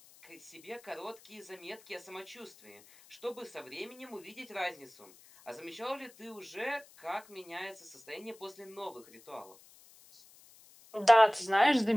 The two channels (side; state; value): left; noise; hiss, 24 dB below the sound